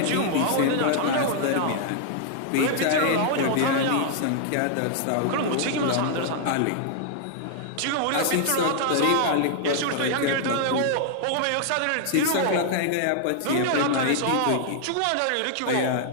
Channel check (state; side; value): different; both; correlation 0.00